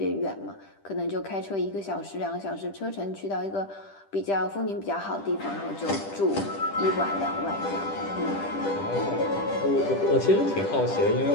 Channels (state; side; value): late; right; 10 ms